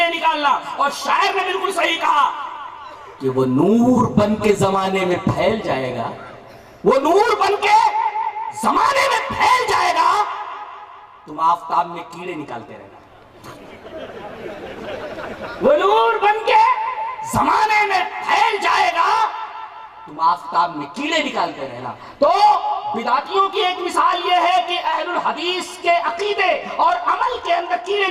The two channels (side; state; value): both; identical; correlation 1.00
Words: نکالنا. اور شاعر نے بالکل صحیح کہا کہ وہ نور بن کے زمانے میں پھیل جائے گا, وہ نور بن کے زمانے میں پھیل جائے گا, تم آفتاب میں کیڑے نکالتے رہنا. وہ نور بن کے زمانے میں پھیل جائے گا, تم آفتاب میں کیڑے نکالتے رہنا. تو بدعتیوں کی ایک مثال یہ ہے کہ اہل الحدیث کے عقیدے اور عمل کے اندر کیڑے